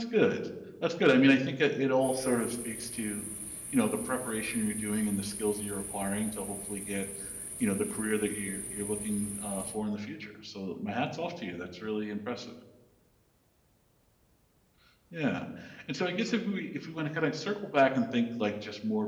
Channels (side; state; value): both; identical; correlation 1.00